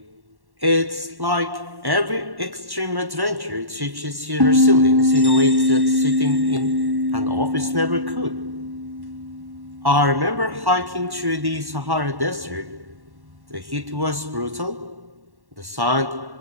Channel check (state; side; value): late; left; 1.1 ms